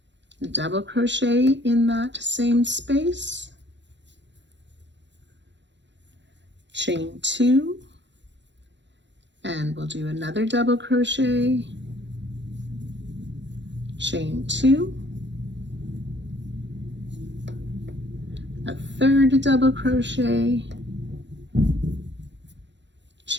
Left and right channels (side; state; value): left; late; 0.53 ms